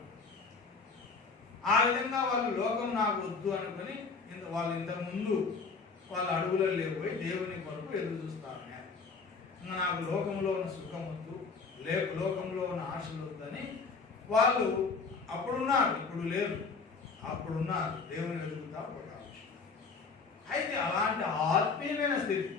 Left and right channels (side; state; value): right; quieter; 4.7 dB